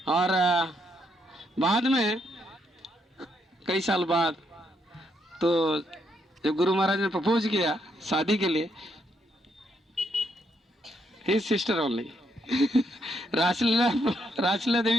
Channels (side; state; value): both; normal; correlation 0.76